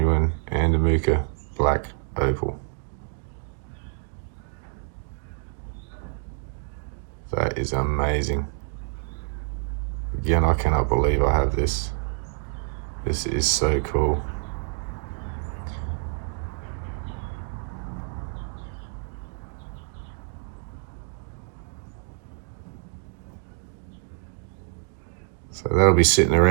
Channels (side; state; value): left; silent; 60 dB below the other